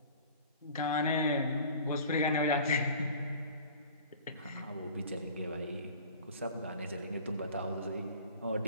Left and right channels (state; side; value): inverted; both; correlation -0.44